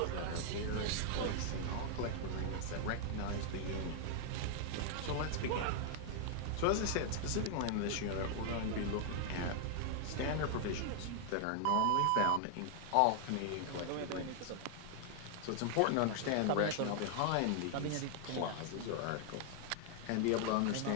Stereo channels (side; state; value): both; different; correlation 0.00